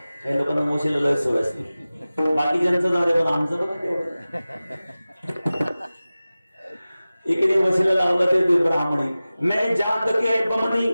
काही लोकांना वशीला लय सवय असते, बाकीच्यांचं जाऊ दे पण आमचं बघा तेवढं. एकीने वशीला लावलं ते ब्राह्मणी, मैं जात के बमनी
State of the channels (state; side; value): inverted; both; correlation -0.97